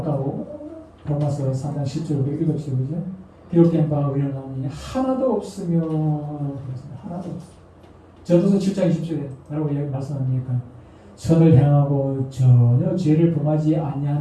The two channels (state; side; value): identical; both; correlation 1.00